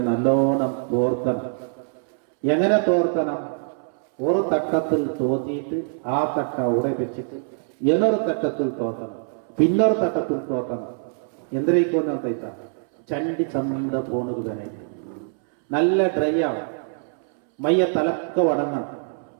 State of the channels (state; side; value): silent; left; 61 dB below the other